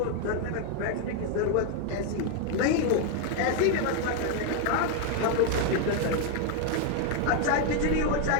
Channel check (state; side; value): different; both; correlation 0.01